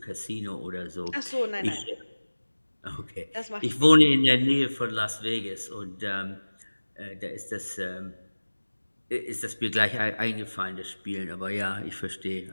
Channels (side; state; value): both; inverted; correlation -1.00